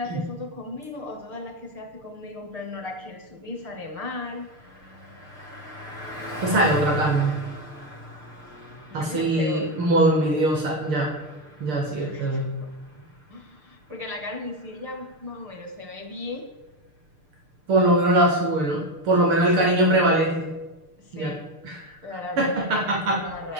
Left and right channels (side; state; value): left; late; 6.6 ms